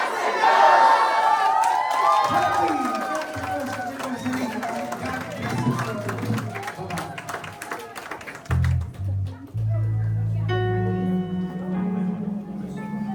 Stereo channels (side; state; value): both; identical; correlation 1.00